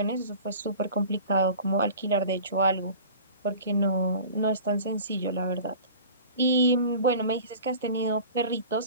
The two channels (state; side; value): inverted; both; correlation -0.40